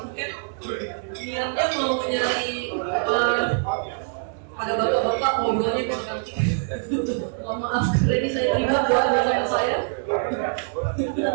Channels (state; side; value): silent; left; digital silence